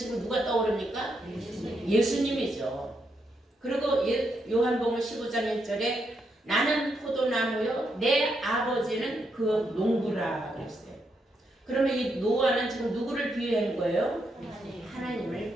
누가 떠오릅니까? 예수님이죠. 그리고 요한복음 15장 1절에 나는 포도나무요 내 아버지는 그 농부라 그랬어요. 그러면 이 노아는 지금 누구를 비유한 거예요?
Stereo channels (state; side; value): normal; both; correlation 0.80